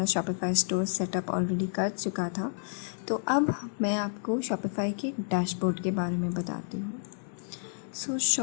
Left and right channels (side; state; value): right; silent; 58 dB below the other